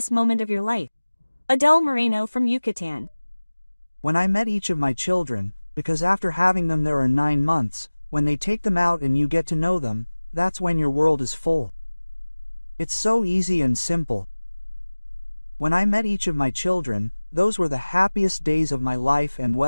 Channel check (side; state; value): both; inverted; correlation -1.00